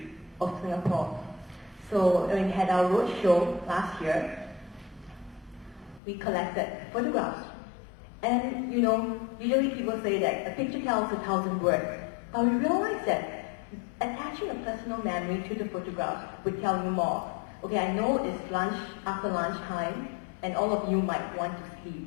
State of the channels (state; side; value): drops out; right; at 6.0 s